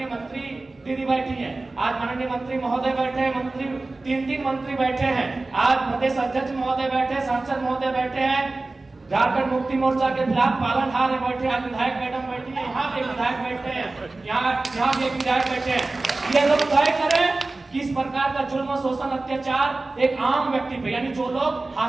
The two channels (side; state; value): left; quieter; 3.2 dB